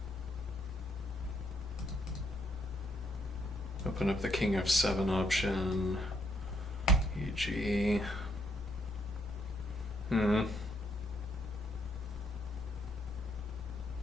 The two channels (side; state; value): both; normal; correlation 0.73